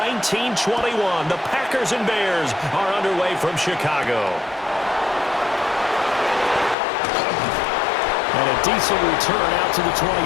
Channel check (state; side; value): drops out; right; at 6.8 s